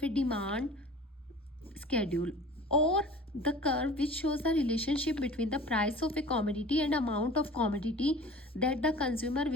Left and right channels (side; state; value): both; normal; correlation 0.42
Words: A demand schedule or the curve which shows the relationship between the price of a commodity and amount of commodity that the consumer